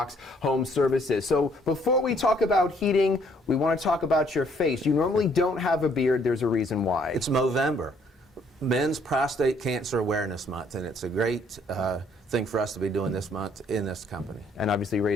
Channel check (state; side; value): normal; both; correlation 0.64